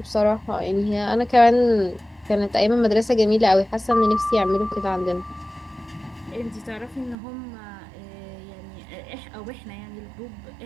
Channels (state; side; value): drops out; left; at 7.2 s